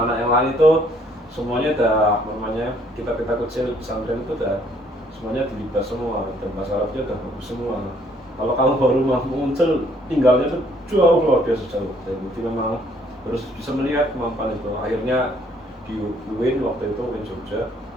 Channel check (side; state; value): both; normal; correlation 0.64